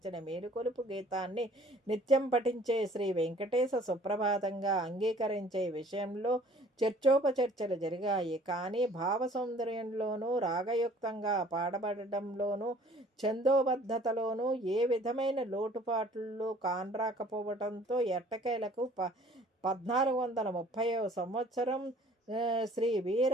మేలుకొలుపు గీతాన్ని నిత్యం పఠించే శ్రీ వెంకటేశ సుప్రభాతంగా అంగీకరించే విషయంలో చర్చోపచర్చలు జరిగాయి. కానీ భావ సౌందర్యంలోనూ రాగయుక్తంగా పాడబడడంలోనూ ఛందోబద్ధతలోనూ ఏ విధమైన లోటుపాట్లు కానరాకపోవడంతో ఎట్టకేలకు 1430వ సంవత్సరం శ్రీ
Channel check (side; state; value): both; normal; correlation 0.53